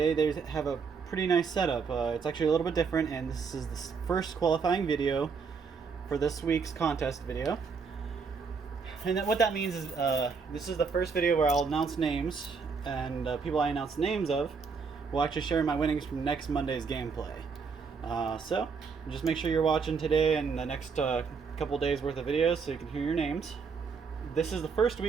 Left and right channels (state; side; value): quieter; left; 5.4 dB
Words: they have a pretty nice setup. It's actually a little bit different, and this is the first qualifying video for this week's contest video. And what that means is this is the first video where I'll announce names, and people I announce names of will actually share my winnings from next Monday's gameplay. So just make sure you're watching today and the next couple days worth of videos so you can hear your names. This is the first